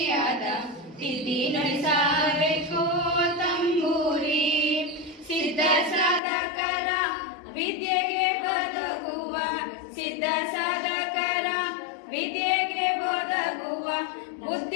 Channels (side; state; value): right; drops out; at 6.2 s